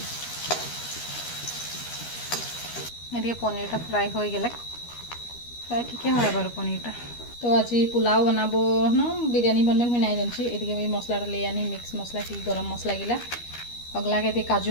एदिके पनीरटा फ्राई हो गेले फ्राई ठीके হয় बारू पनीरटा तो आज पुलाव बनाबो न बिरयानी बनबे मैं नहीं जानसी एदिके मैं मसलाटा ले आनी मिक्स मसला की गरम मसला गिला अगला के दी काजू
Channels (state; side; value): late; right; 13 ms